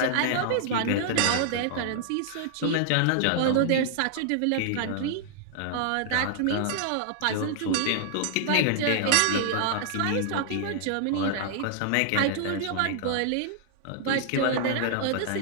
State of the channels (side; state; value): both; different; correlation -0.01